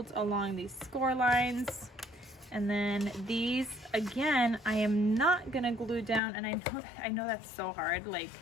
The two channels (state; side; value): drops out; right; at 6.2 s